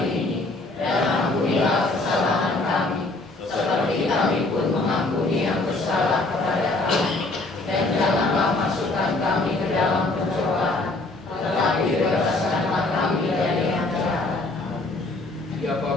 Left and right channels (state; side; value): quieter; right; 3.0 dB